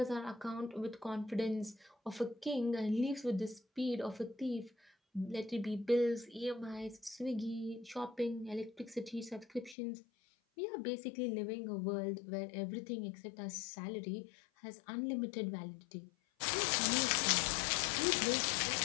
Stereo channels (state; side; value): drops out; right; at 9.8 s